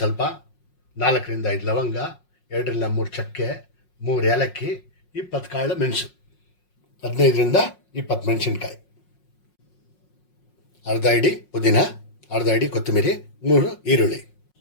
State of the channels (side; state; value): right; late; 5.5 ms